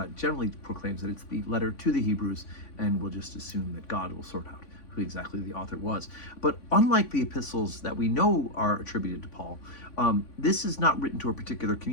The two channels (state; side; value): late; right; 3.5 ms